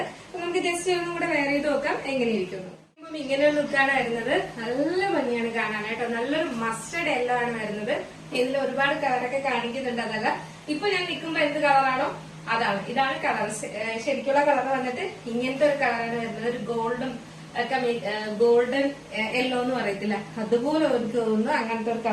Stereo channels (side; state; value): both; identical; correlation 1.00